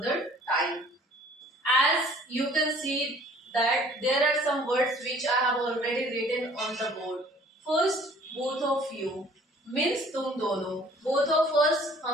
time. As you can see that there are some words which I have already written on the board. First, both of you means तुम दोनों, both of us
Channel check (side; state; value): both; normal; correlation 0.53